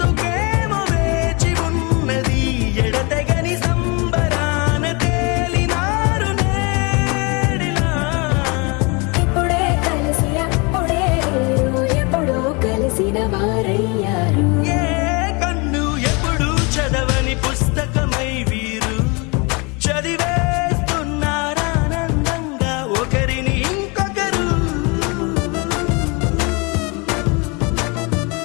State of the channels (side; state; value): right; quieter; 29.6 dB